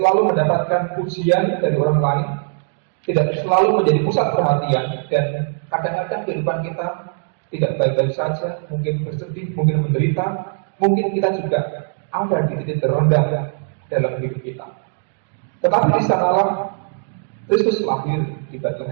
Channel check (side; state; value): left; silent; 66 dB below the other